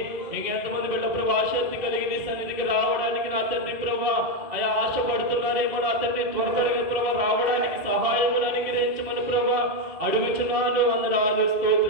ఇంకెంతమంది బిడ్డ ప్రభా ఆసక్తి కలిగి నీ సన్నిధికి రావడానికి నా తండ్రి ప్రభా అయా ఆశపడుతున్నారేమో నా తండ్రి త్వరగా ప్రభా రావడానికి సహాయమును అనుగ్రహించమని ప్రభా అడుగుచున్నాను. వందనాలు,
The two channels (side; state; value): left; late; 2.3 ms